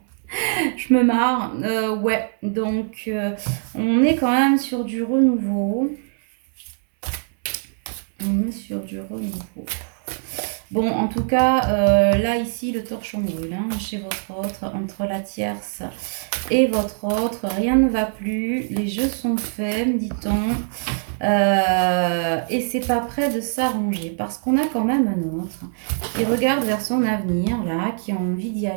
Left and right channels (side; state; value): left; silent; digital silence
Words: Je me marre. Ouais, donc on est quand même sur du renouveau. On est sur du renouveau. Bon, en tout cas, là, ici, le torchon brûle chez votre autre, entre la tierce et votre autre. Rien ne va plus. Les jeux sont faits, me dit-on. Et c'est pas prêt de s'arranger parce qu'on a quand même un autre qui regarde vers son avenir, là, qui a envie d'y